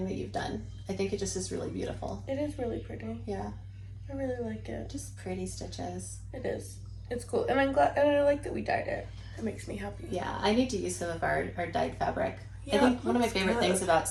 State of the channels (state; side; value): identical; both; correlation 1.00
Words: that you've done. I think it just is really beautiful. It is really pretty. Yeah. I really like it. Just pretty stitches. It is. It's cool. And I'm glad, and I like that we dyed it. It makes me happy. Yeah, I need to use some of our dyed fabric. Yeah, I think one of my favorite things about